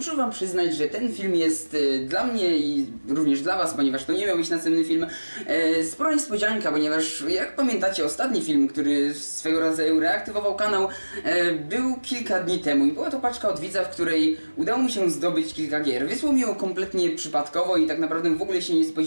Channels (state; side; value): inverted; both; correlation -1.00